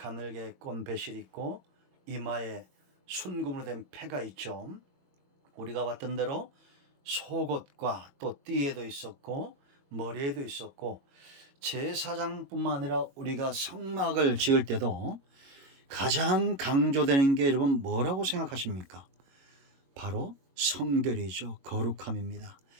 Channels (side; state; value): left; late; 22 ms